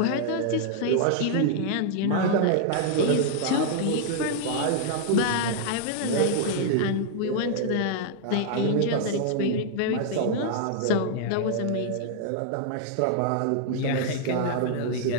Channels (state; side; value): different; both; correlation -0.01